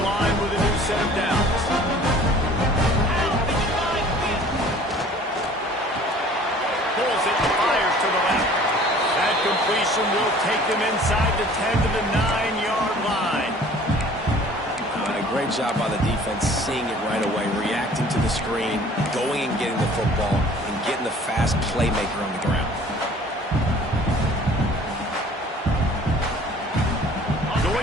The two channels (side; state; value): both; normal; correlation 0.50